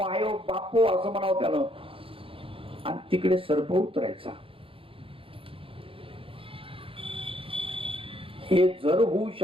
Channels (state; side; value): late; left; 0.26 ms